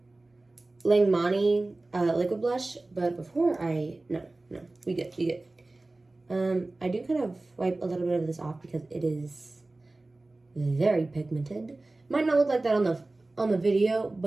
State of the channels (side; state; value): left; quieter; 3.0 dB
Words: Langmani liquid blush, but before no, we good. I do kind of wipe a little bit of this off because it is very pigmented. Might not look like that on the video,